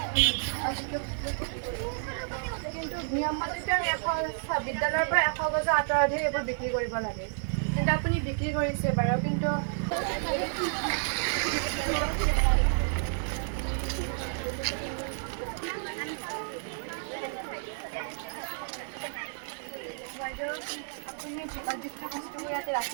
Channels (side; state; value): left; silent; 57 dB below the other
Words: কিন্তু নিয়মমতে বিদ্যালয়ৰ পৰা 100 গজৰ আঁতৰতহে এইবোৰ বিক্ৰী কৰিব লাগে, কিন্তু আপুনি বিক্ৰী কৰিছে বাৰু। কিন্তু আপুনি যিটো বস্তুবোৰ ইয়াতে